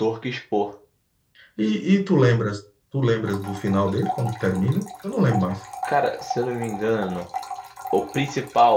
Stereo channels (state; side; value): identical; both; correlation 1.00